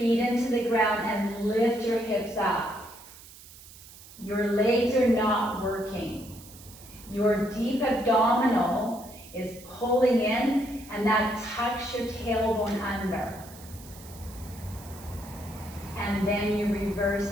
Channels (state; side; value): noise; right; hiss, 19 dB below the sound